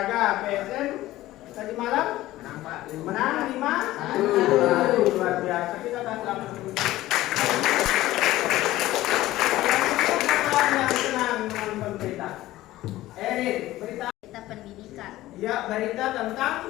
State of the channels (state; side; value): quieter; right; 16.1 dB